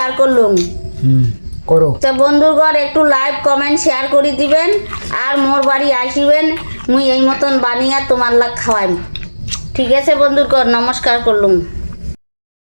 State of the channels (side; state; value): both; inverted; correlation -1.00